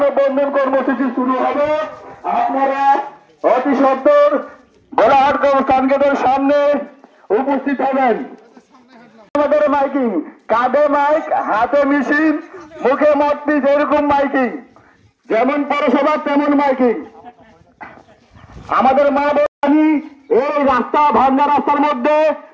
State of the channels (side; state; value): both; identical; correlation 1.00